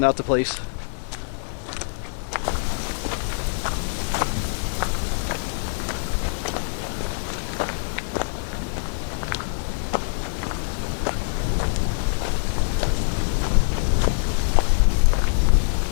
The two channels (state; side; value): silent; right; digital silence